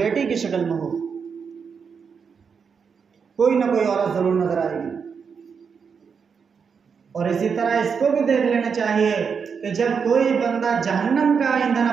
की शक्ल में हो, कोई ना कोई औरत ज़रूर नज़र आएगी। और इसी तरह इसको भी देख लेना चाहिए कि जब कोई बंदा जहन्नम का ईंधन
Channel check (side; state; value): left; quieter; 6.1 dB